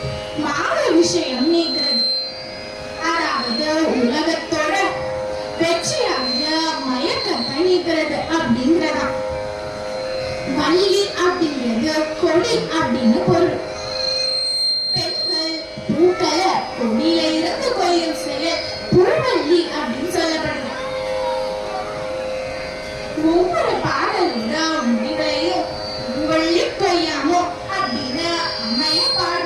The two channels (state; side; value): identical; both; correlation 1.00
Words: மாத விஷயம் நீங்கிறது. அதாவது உலகத்தோட வெற்றியாக மயக்கத்தை நீக்கிறது அப்படிங்கிறதா. வள்ளி அப்படிங்கிறது கொடி அப்படின்னு பொருள். பெண்கள் பூக்களை கொடியில இருந்து கொய்யும் செயல் பூவல்லி அப்படின்னு சொல்லப்படுது. ஒவ்வொரு பாடலோட முடிவையும் பூவல்லி கொய்யாமோ அப்படின்னு அம்மைய